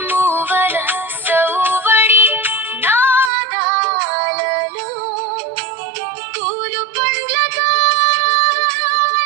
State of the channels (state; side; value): drops out; left; at 3.3 s